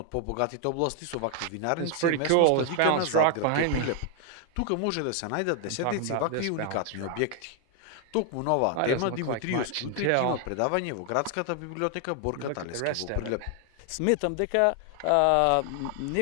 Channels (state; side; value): different; both; correlation 0.00